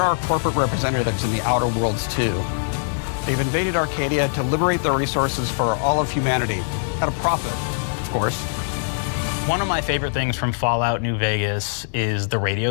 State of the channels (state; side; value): silent; right; digital silence